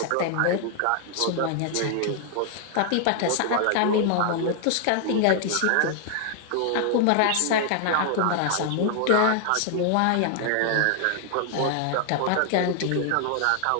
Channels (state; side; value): different; both; correlation 0.00